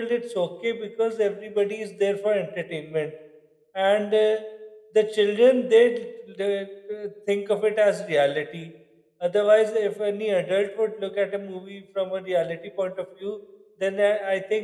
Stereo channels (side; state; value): both; identical; correlation 1.00